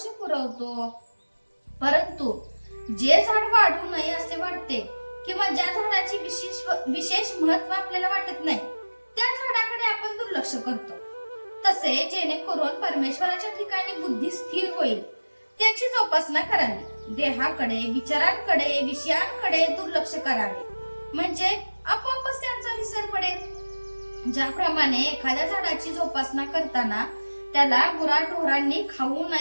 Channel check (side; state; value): both; inverted; correlation -1.00